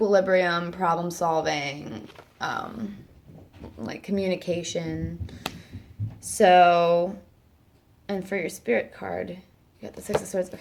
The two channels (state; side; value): identical; both; correlation 1.00